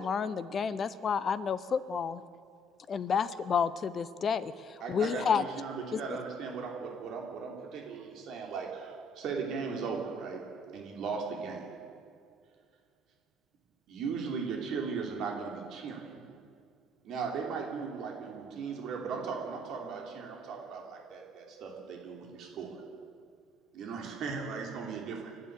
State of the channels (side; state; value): both; normal; correlation 0.63